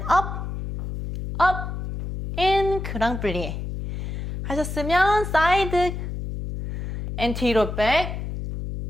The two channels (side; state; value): left; noise; hum, 5 dB below the sound